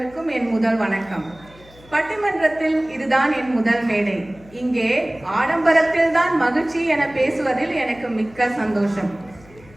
என் முதல் வணக்கம். பட்டிமன்றத்தில் இதுதான் என் முதல் மேடை. இங்கே ஆடம்பரத்தில் தான் மகிழ்ச்சி என பேசுவதில் எனக்கு மிக்க சந்தோஷம்.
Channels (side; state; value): left; noise; hum, 24 dB below the sound